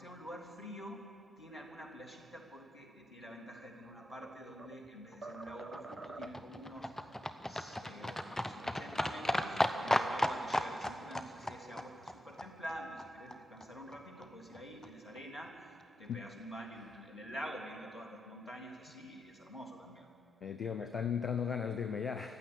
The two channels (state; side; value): normal; both; correlation 0.87